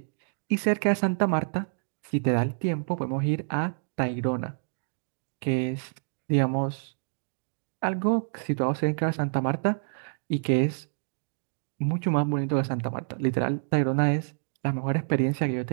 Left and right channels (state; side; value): silent; left; digital silence